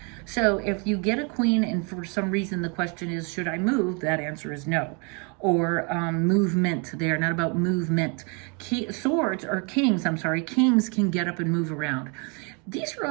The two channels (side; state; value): left; quieter; 34.0 dB